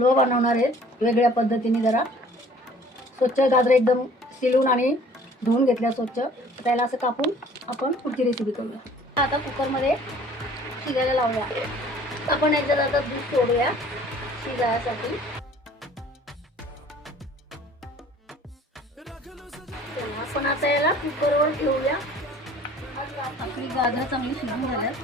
बनवणार आहे वेगळ्या पद्धतीने. जरा स्वच्छ गाजर एकदम शिलून आणि धुवून घेतल्या स्वच्छ. त्याला असं कापून आपण पुढची रेसिपी करूया. आता कुकरमध्ये शिजायला लावूया. आपण याच्यात आता दूध सोडूया शिजायसाठी. आपण आता याला कुकरवर ठेवूया. आपली गाजर चांगली शिजून झाल्यात.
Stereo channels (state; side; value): normal; both; correlation 0.52